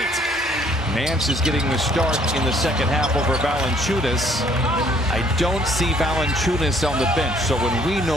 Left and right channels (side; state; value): both; normal; correlation 0.62